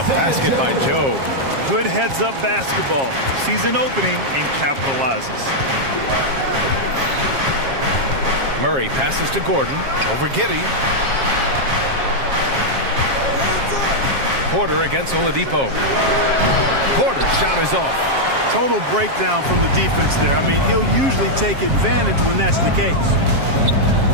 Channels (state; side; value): late; left; 7.4 ms